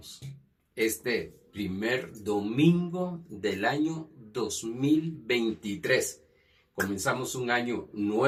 este primer domingo del año 2023. Comenzamos un año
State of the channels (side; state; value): both; identical; correlation 1.00